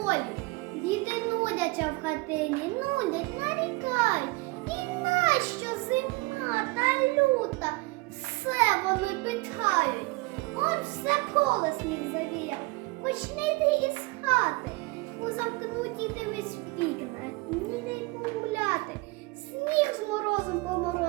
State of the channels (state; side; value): quieter; left; 24.8 dB